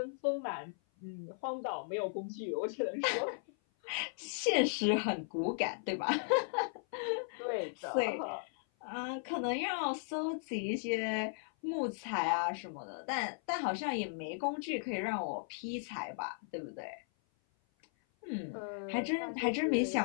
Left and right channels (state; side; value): silent; right; 53 dB below the other